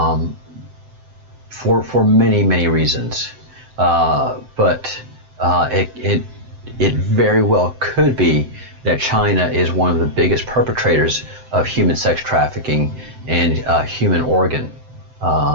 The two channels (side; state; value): left; late; 7.8 ms